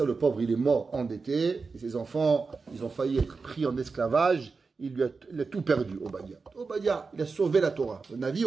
le pauvre, il est mort endetté. Et ses enfants, ils ont failli être pris en esclavage. Il a tout perdu, Obadiah. Obadiah, il a sauvé la Torah. Le Navi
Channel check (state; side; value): quieter; left; 4.5 dB